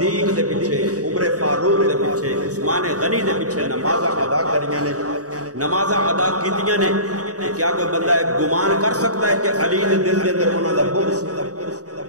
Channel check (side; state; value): left; late; 0.66 ms